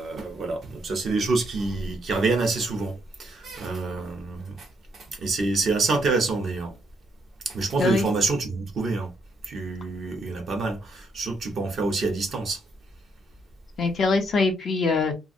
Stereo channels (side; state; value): both; normal; correlation 0.74